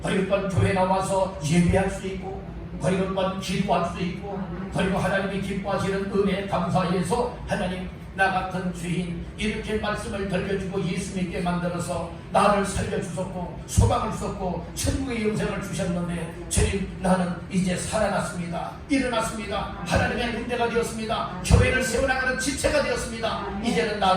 그리고 또 교회 나와서 예배할 수 있고, 그리고 또 기도할 수 있고, 그리고 하나님이 기뻐하시는 은혜에 감사해서 하나님, 나 같은 죄인 이렇게 말씀을 들려주고 예수 믿게 만들어서 나를 살려주셨고 소망을 주셨고 천국의 영생을 주셨는데, 주님, 나는 이제 살아났습니다. 일어났습니다. 하나님의 군대가 되었습니다. 교회를 세워나가는 지체가 되었습니다. 이제는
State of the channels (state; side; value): identical; both; correlation 1.00